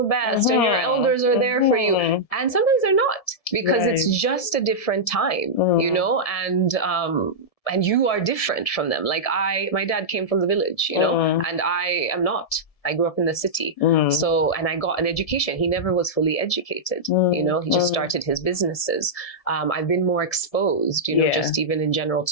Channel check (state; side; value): late; right; 1.7 ms